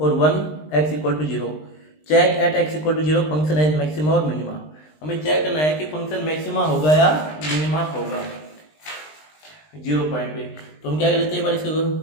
और 1 X equal to 0, check at x equal to 0 function has maxima और मिनिमा। हमें चेक करना है कि फंक्शन मैक्सिमा होगा या मिनिमा होगा 0 पॉइंट पे। तो हम क्या कर लेते हैं, एक बार इसका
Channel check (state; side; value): late; right; 20 ms